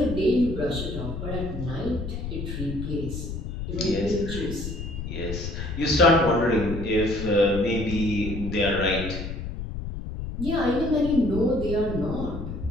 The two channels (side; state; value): left; noise; rumble, 6 dB below the sound